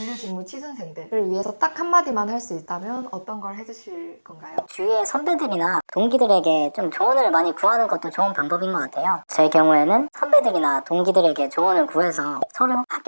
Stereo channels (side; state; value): both; inverted; correlation -1.00